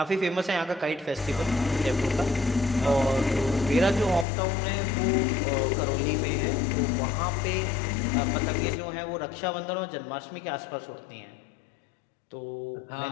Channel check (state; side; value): drops out; right; at 4.2 s